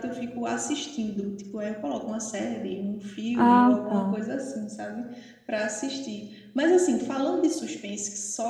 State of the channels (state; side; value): identical; both; correlation 1.00